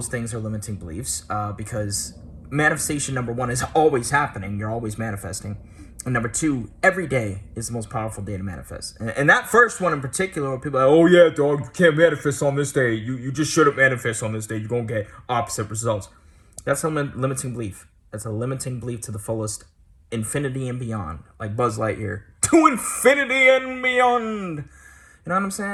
things are limiting beliefs because manifestation, number one, is always happening. You're always manifesting. And number two, every day is the most powerful day to manifest. And that first one in particular, where people are like, oh yeah, dog, you can't manifest on this day. You just shouldn't manifest on this day. You're going to get opposite results. That's a limiting belief. That's a limiting belief to the fullest, infinity and beyond. Like Buzz Lightyear. To infinity and beyond. You know what I'm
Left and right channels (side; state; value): both; identical; correlation 1.00